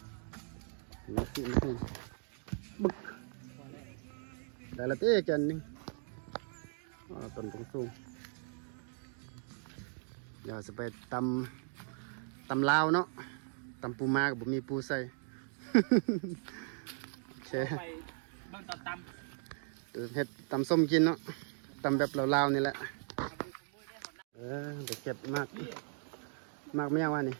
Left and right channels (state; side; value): silent; left; 53 dB below the other